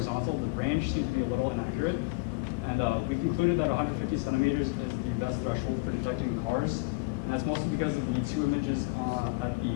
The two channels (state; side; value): quieter; right; 26.4 dB